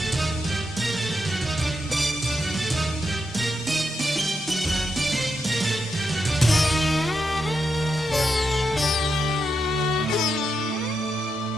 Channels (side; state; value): both; normal; correlation 0.84